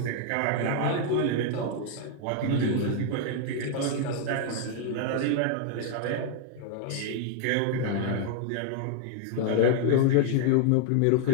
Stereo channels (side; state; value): both; different; correlation 0.00